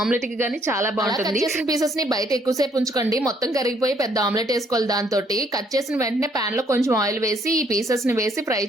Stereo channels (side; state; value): both; normal; correlation 0.66